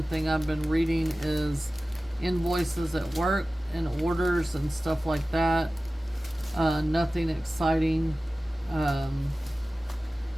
thing I've been reading is invoices at work and orders and stuff like that. Nothing exciting.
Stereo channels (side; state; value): both; normal; correlation 0.96